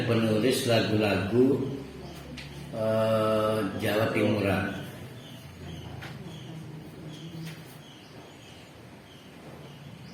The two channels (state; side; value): identical; both; correlation 1.00